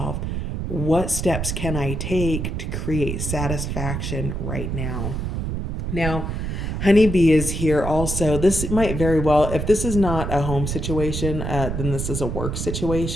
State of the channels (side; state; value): right; noise; rumble, 3 dB below the sound